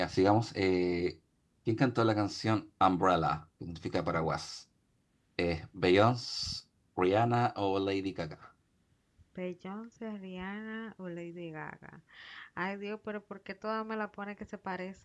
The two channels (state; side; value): identical; both; correlation 1.00